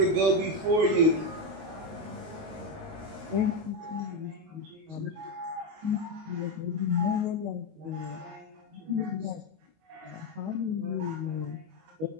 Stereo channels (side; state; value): left; late; 19 ms